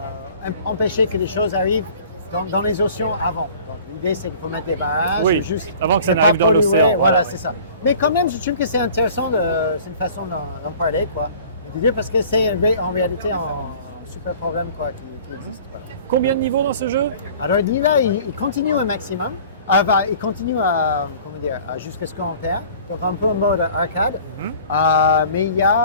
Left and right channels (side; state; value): both; inverted; correlation -0.47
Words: empêcher que les choses arrivent dans les océans avant. Donc l'idée, c'est qu'il faut mettre des barrages. Oui, juste avant que ça ne n'arrive pas dans polluer. l'océan. Voilà, oui. c'est ça. Mais quand même, je trouve que c'est intéressant, c'est une façon d'en parler, quoi. Et de dire parce que c'est en réalité un super problème, quoi, qui existe. Voilà. Combien de niveaux dans ce jeu? Alors là, il continue un maximum. Il continue jusqu'à ce qu'on perd. Donc un peu en mode arcade. Mais il y